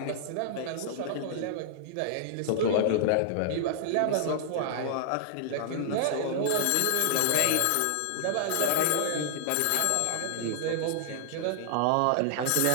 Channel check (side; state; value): both; different; correlation -0.01